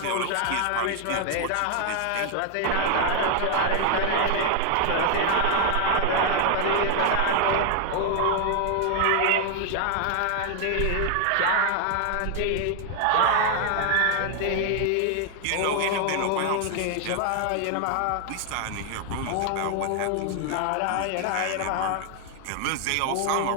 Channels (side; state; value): both; different; correlation 0.00